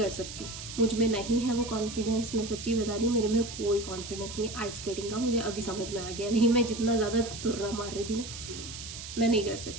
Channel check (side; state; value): right; noise; hiss, 10 dB below the sound